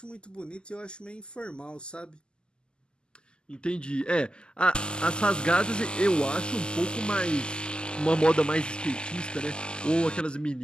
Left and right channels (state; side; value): late; right; 0.048 ms